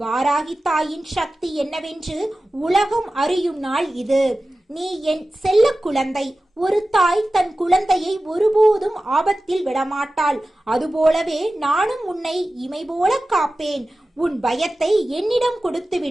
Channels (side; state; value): both; normal; correlation 0.95